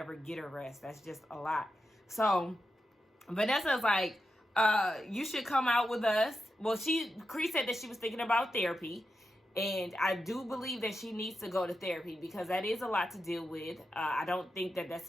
get a rest? That's just a lot. So Vanessa's like, you should come out with us. Well, Cree said that she was thinking about therapy. And I do believe that she needs to go to therapy because that is a lot to deal with. I don't think that that's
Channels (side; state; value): both; normal; correlation 0.88